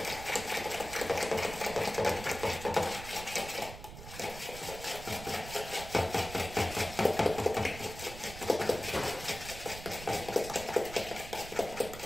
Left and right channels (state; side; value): noise; right; rumble, 12 dB below the sound